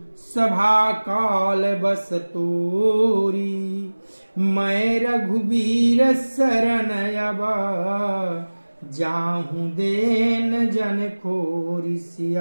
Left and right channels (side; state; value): both; inverted; correlation -1.00